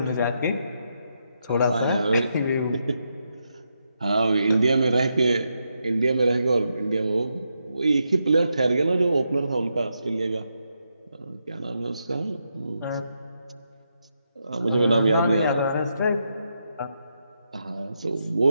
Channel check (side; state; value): both; inverted; correlation -0.83